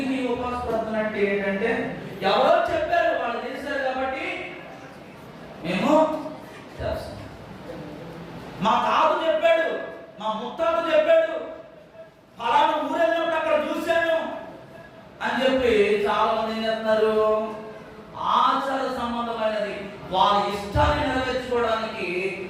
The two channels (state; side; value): identical; both; correlation 1.00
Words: ఈ ఉపవాస ప్రార్థన అంటే ఏంటంటే ఎవరో చెప్పారు, వాళ్ళు చేశారు కాబట్టి మేము చేస్తాం. మా తాత చెప్పాడు, మా ముత్తాత చెప్పాడు, ఫలానా ఊరెళ్ళినప్పుడు అక్కడ చూశాను అని చెప్పి చాలా మంది ఏం చేస్తున్నారు, ఆచార సంబంధమైనది వాళ్ళ ఇష్టాన్ని నెరవేర్చుకోవడానికి